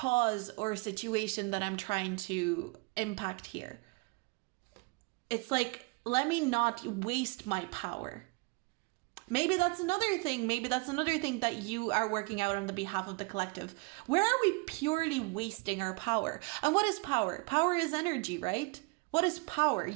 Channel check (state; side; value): quieter; left; 28.7 dB